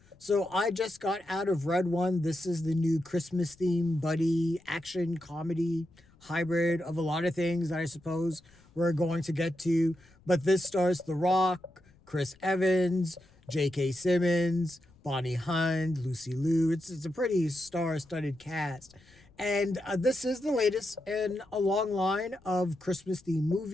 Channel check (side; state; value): left; noise; rumble, 29 dB below the sound